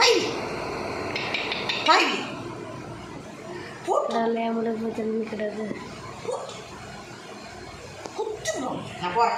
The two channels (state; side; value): identical; both; correlation 1.00